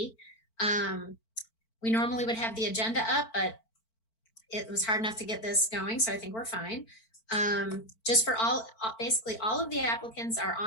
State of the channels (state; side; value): late; right; 4.5 ms